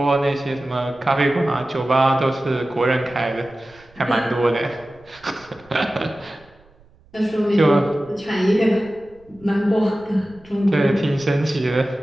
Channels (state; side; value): noise; right; rumble, 28 dB below the sound